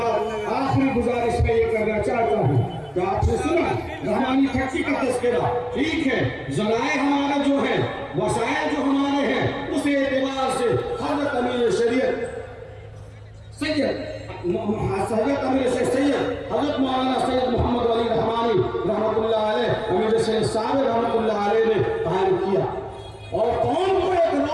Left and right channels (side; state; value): both; identical; correlation 1.00